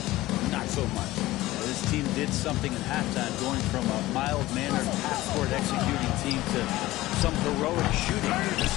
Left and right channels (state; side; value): quieter; right; 17.4 dB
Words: not so much. This team did something in halftime, going from a mild-mannered half-court executing team to some heroic shooting in the